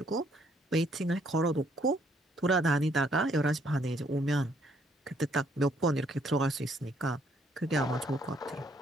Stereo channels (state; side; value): normal; both; correlation 0.67